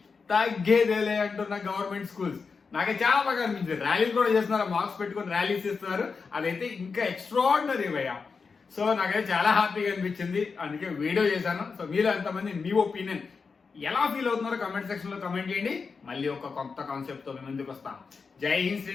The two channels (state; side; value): quieter; right; 5.0 dB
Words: తగ్గేదేలే అంటున్న గవర్నమెంట్ స్కూల్స్ నాకు చాలా బాగా అనిపించింది. ర్యాలీలు కూడా చేస్తున్నారు, మార్క్స్ పెట్టుకుని ర్యాలీస్ ఇస్తున్నారు, అదైతే ఇంకా ఎక్స్ట్రాడినరీ భయ్యా. సో నాకైతే చాలా హ్యాపీగా అనిపించింది, అందుకే వీడియో చేశాను. సో మీరు ఎంతమంది మీ ఒపీనియన్ ఎలా ఫీల్ అవుతున్నారో కమెంట్ సెక్షన్ లో కమెంట్ చేయండి. మళ్ళీ ఒక కొత్త కాన్సెప్ట్ తో మేము ముందుకు వస్తాం. జై హింద్,